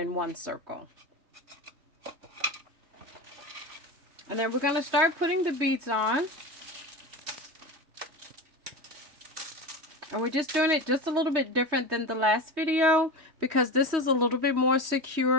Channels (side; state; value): left; late; 3.2 ms